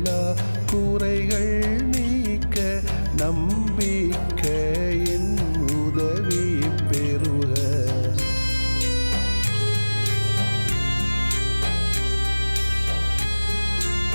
குறைகள் நீக்க நம்பிக்கையின் உதவி பெறுக.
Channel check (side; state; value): both; inverted; correlation -1.00